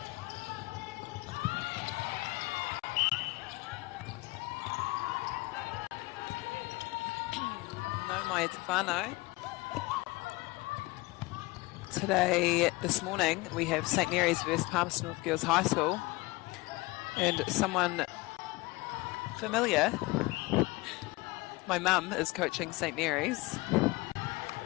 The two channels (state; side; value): quieter; right; 22.6 dB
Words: No mai te whānau. Today, this morning, we have St Mary's versus Palmerston North Girls High School. And someone familiar, my mum is coaching St Mary's,